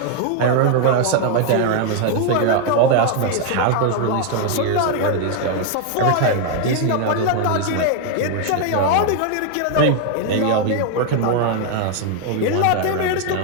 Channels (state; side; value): different; both; correlation 0.00